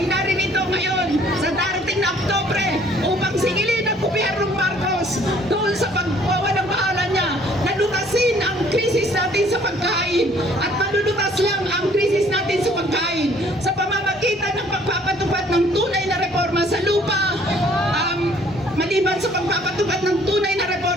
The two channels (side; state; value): both; normal; correlation 0.59